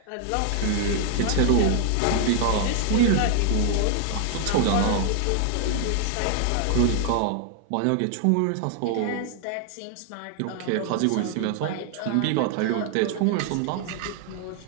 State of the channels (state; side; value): different; both; correlation 0.00